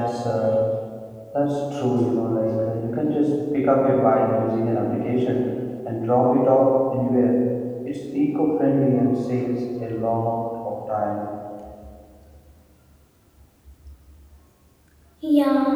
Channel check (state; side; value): identical; both; correlation 1.00